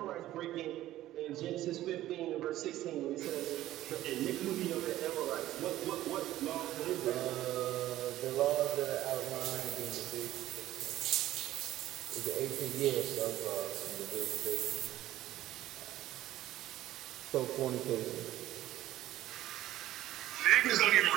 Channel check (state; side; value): quieter; left; 14.4 dB